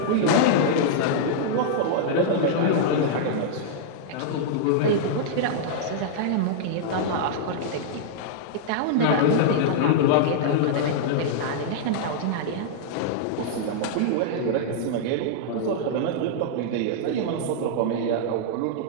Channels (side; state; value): both; different; correlation -0.01